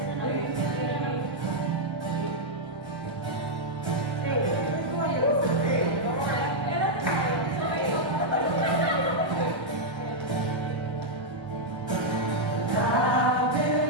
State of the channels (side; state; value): both; normal; correlation -0.04